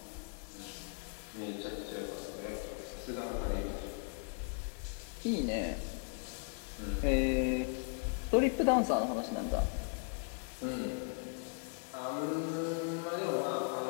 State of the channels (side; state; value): right; silent; 53 dB below the other